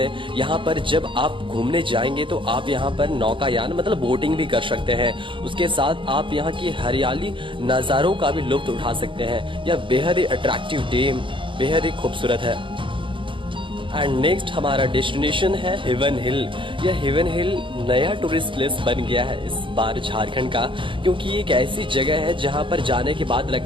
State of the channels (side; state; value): left; late; 0.25 ms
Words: यहाँ पर जब आप घूमने जाएंगे तो आप यहाँ पर नौकायान मतलब बोटिंग भी कर सकते हैं। उसके साथ आप यहाँ की हरियाली नज़ारों का भी लुत्फ उठा सकते हैं। यह बेहद ही अट्रैक्टिव डैम बेहद ही खूबसूरत है। एंड नेक्स्ट हमारा डेस्टिनेशन है हेवन हिल। यह हेवन हिल नया टूरिस्ट प्लेस बन गया है इस बार झारखंड का, क्योंकि एक ऐसी जगह है जहां पर जाने के बाद